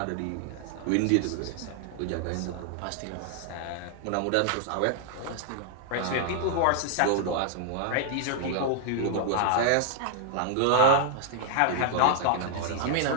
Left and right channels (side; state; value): both; different; correlation 0.00